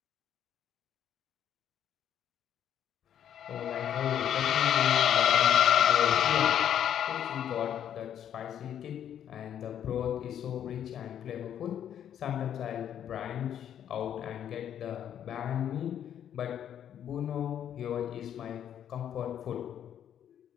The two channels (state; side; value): quieter; right; 9.8 dB